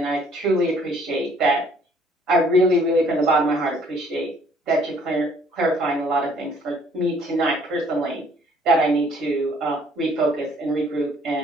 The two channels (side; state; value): both; normal; correlation 0.60